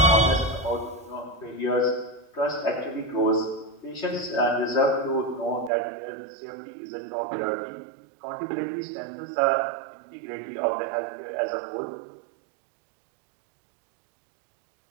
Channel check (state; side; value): drops out; left; at 5.7 s